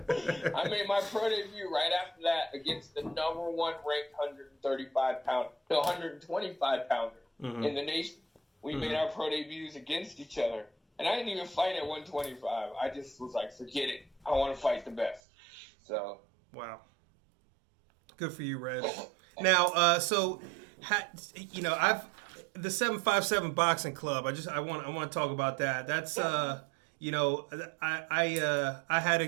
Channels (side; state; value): left; drops out; at 15.2 s